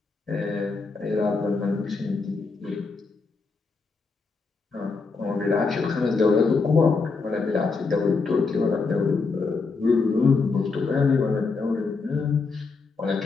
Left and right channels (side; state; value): right; quieter; 4.4 dB